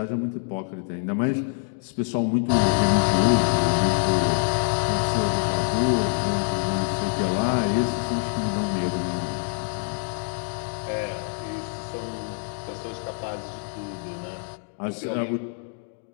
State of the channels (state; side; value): silent; right; digital silence